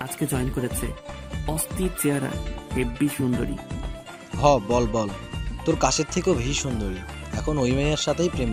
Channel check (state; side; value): identical; both; correlation 1.00